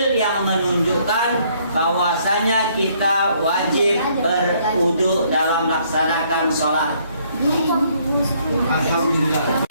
yang menunjukkan bahwasanya kita wajib berwudu dalam melaksanakan sholat. Alhamdulillah.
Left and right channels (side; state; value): both; inverted; correlation -0.66